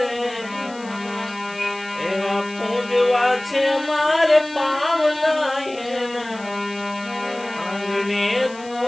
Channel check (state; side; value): noise; left; hiss, 21 dB below the sound